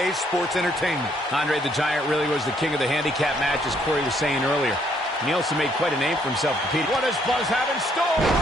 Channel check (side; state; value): both; normal; correlation 0.68